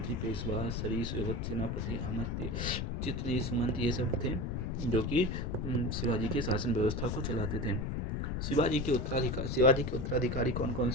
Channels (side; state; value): left; noise; rumble, 1 dB below the sound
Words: पेशवा, सरीस, सेनापति, अमात्य, चित्री, सुमंत ये सब थे जो कि शिवाजी के शासन व्यवस्था को चलाते थे। शिवाजी के उत्तराधिकारी कौन कौन